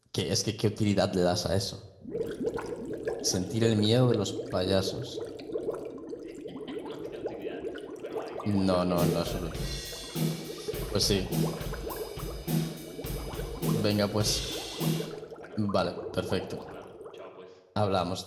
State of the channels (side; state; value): both; identical; correlation 1.00